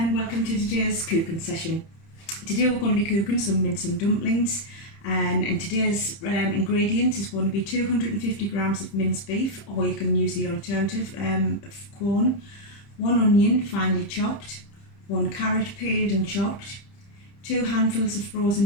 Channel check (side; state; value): right; late; 30 ms